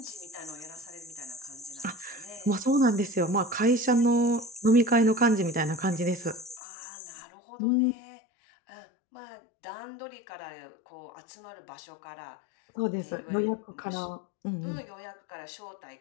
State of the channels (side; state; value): right; drops out; at 6.6 s